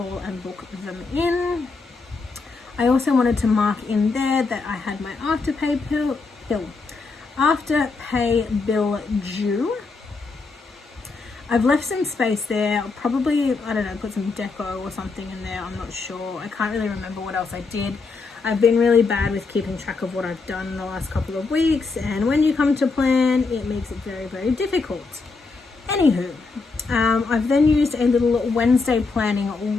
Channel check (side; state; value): right; quieter; 4.2 dB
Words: and book them in. I also wanted to mark in there that I had my afterpay bill due. I've left some space there. I'll probably, I don't know, put some deco or something in there. I'm not sure. I can't really remember what else I did. I've been really bad with keeping track of what I've done in the last couple of weeks, and when you come to plan, it makes it very difficult. Anywho, I've then used a little Wednesday planning